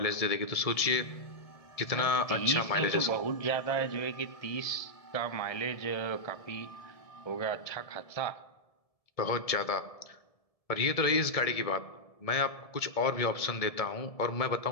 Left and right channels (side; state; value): right; late; 1.7 ms